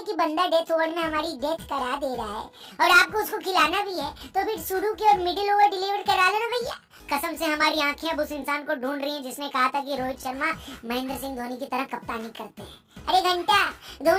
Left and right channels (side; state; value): both; identical; correlation 1.00